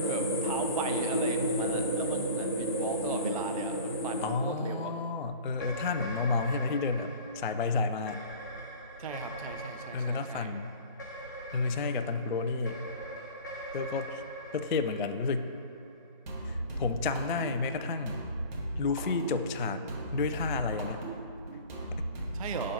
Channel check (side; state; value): both; inverted; correlation -0.40